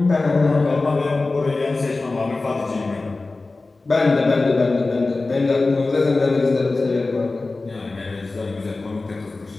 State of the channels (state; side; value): quieter; right; 3.4 dB